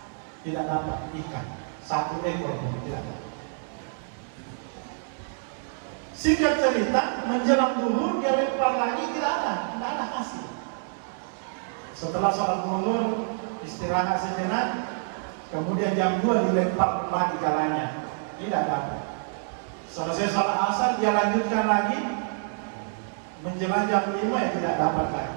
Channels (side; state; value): left; silent; digital silence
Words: tidak dapat ikan, satu ekor pun tidak dapat. Singkat cerita, menjelang duhur dia lempar lagi, tidak ada hasil. Setelah sholat zuhur istirahat sejenak, kemudian jam 2 dilempar kembali jalannya, tidak dapat. Selesai sholat asar dia lanjutkan lagi, menjelang jam 5 ya tidak dapat lagi.